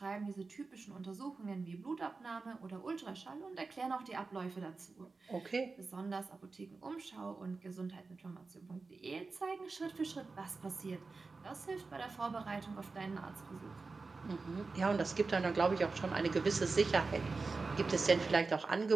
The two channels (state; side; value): quieter; left; 4.1 dB